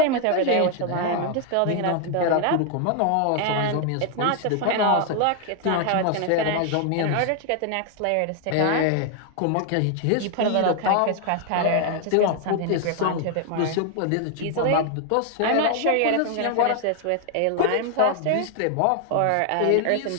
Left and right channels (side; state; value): both; different; correlation 0.00